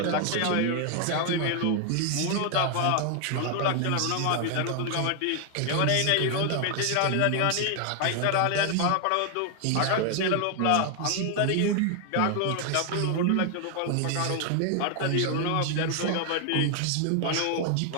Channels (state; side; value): different; both; correlation 0.00